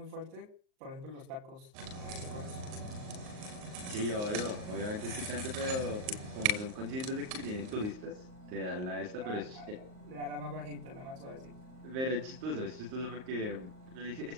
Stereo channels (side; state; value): left; late; 38 ms